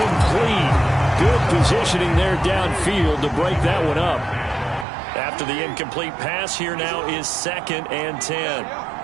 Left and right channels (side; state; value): left; drops out; at 4.9 s